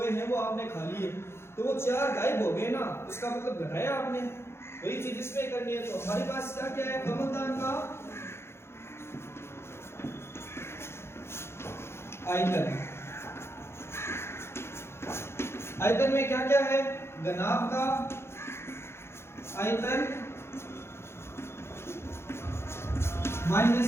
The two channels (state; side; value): late; right; 0.12 ms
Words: हैं वो आपने खा लिए, तो वो 4 गायब हो गए ना, उसका मतलब घटाया आपने। वही चीज इसमें करनी है। तो हमारे पास क्या है, कमलदान का आयतन में क्या है, घनाभ का आयतन